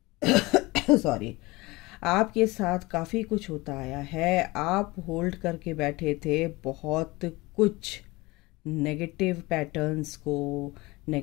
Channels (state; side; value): quieter; right; 22.2 dB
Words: सॉरी, आपके साथ काफ़ी कुछ होता आया है। आप होल्ड करके बैठे थे बहुत कुछ नेगेटिव पैटर्न्स को,